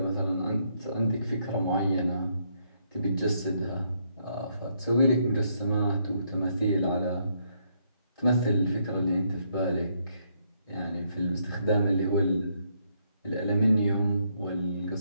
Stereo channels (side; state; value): both; inverted; correlation -0.73